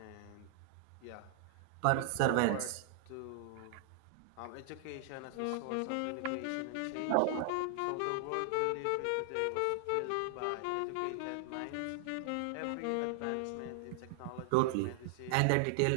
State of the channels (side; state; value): both; different; correlation 0.00